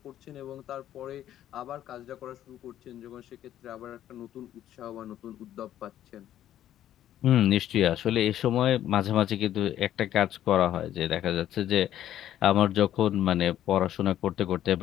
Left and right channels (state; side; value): quieter; right; 11.8 dB